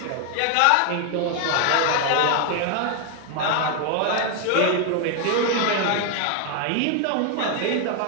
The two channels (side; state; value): both; different; correlation 0.00